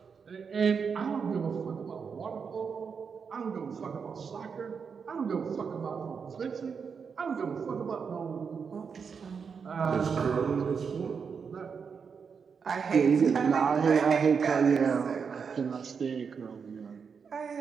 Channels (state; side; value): quieter; left; 6.1 dB